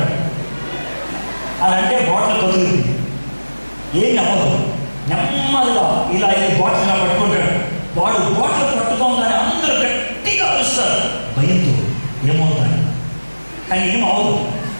అలా అంటే బాటిల్ కదులుతుంది, ఏమి అవ్వదు. నెమ్మదిగా ఇలా బాటిల్ ఇలా పట్టుకుంటాడు. వాడు బాటిల్ పట్టుకోగానే అందరూ గట్టిగా అరుస్తారు భయంతో, ఏమవుతాడు కానీ ఏం అవ్వదు.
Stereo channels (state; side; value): inverted; both; correlation -1.00